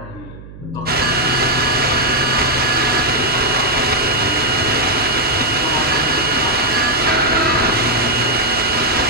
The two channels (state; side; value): noise; right; hum, 17 dB below the sound